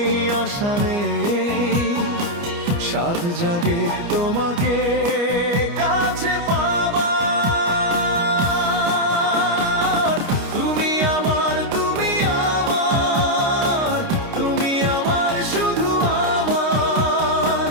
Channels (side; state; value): left; late; 29 ms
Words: আশা নেই, সাধ জাগে তোমাকে কাছে পাবার। তুমি আমার, তুমি আমার, তুমি আমার, শুধু আমার।